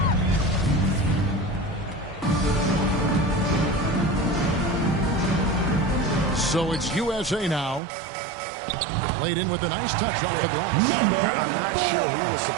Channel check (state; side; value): drops out; left; at 7.8 s